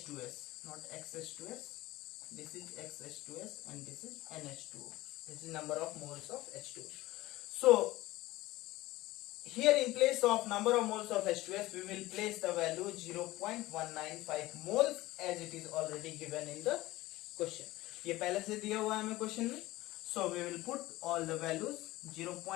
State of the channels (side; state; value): right; quieter; 18.1 dB